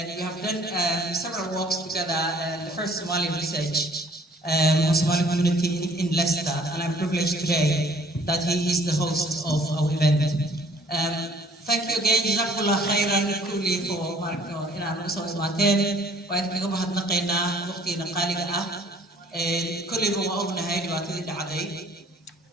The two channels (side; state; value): both; normal; correlation 0.57